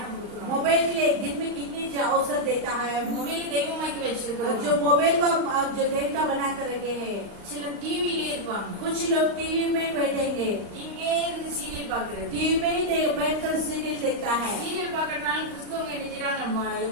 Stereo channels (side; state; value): left; late; 35 ms